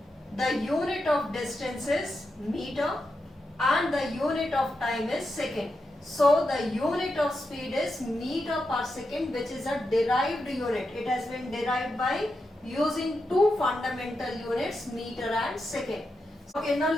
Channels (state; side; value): normal; both; correlation 0.87